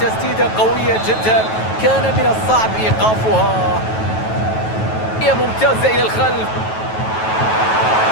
قوية جدا، كان من الصعب إيقافها. هي ممتازة إلى الخلف.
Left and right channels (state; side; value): late; right; 9.2 ms